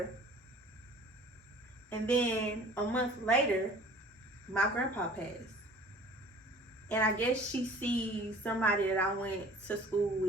And then a month later, my grandpa passed. And I guess she sees somebody that I went to school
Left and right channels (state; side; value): normal; both; correlation 0.48